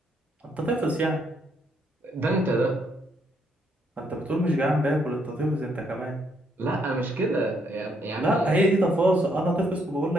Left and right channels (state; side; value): normal; both; correlation 0.73